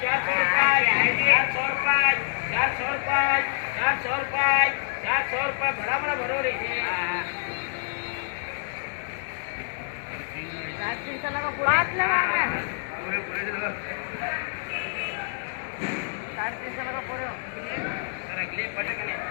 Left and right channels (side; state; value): right; silent; 60 dB below the other